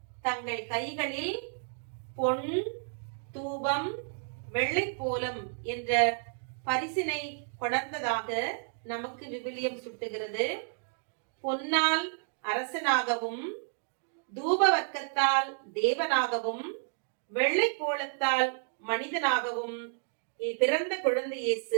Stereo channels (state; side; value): silent; left; digital silence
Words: தங்கள் கைகளில் பொன், தூபம், வெள்ளைப்போலம் என்ற பரிசினை கொணர்ந்ததாக நமக்கு விவிலியம் சுட்டுகிறது. பொன்னால் அரசனாகவும், தூப வர்க்கத்தால் தேவனாகவும், வெள்ளைப்போலத்தால் மனிதனாகவும் பிறந்த குழந்தை